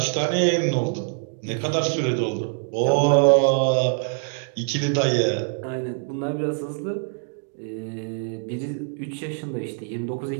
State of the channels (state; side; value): silent; left; 56 dB below the other